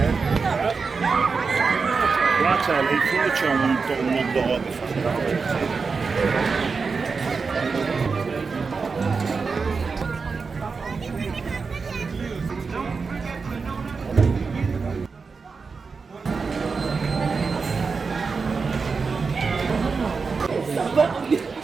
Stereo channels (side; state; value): left; quieter; 4.8 dB